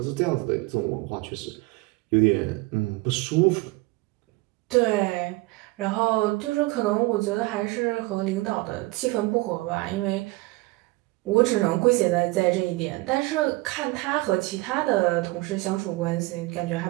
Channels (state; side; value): quieter; left; 22.3 dB